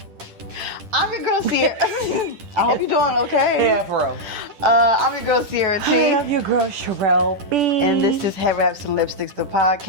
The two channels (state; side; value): late; left; 10 ms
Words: I'm your girl Sierra. I hope you're doing okay. Yeah, for real. I'm your girl Sierra T. I love your girl Sherelle B. And this is Head Wraps and Lipsticks, the podcast.